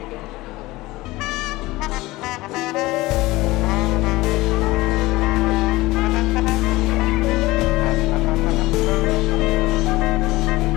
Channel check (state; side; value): quieter; right; 19.6 dB